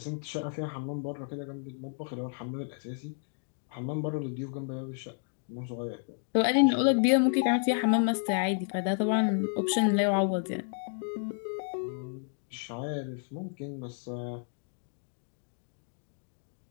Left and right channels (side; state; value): right; silent; 57 dB below the other